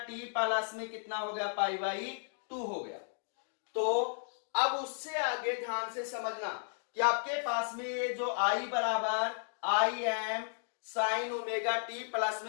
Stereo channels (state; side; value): silent; right; digital silence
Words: प्लस में कितना हो गया, पाई बाई 2 हो गया। तो अब उससे आगे ध्यान से समझना कि आपके पास में ये जो I बराबर Im sine omega t plus